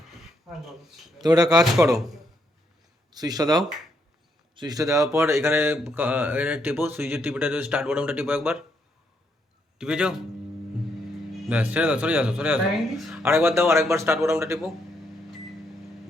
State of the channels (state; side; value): normal; both; correlation 0.76